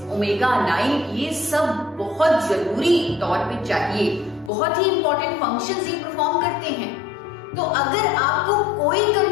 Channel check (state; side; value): drops out; right; at 4.5 s